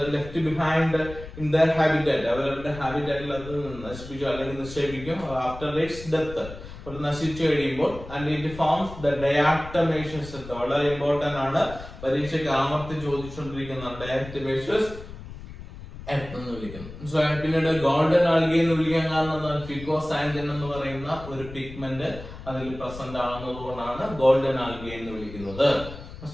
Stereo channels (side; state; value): left; noise; rumble, 14 dB below the sound